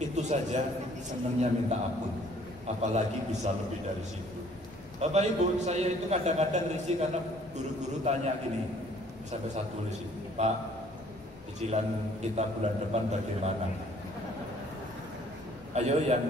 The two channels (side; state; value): left; noise; rumble, 26 dB below the sound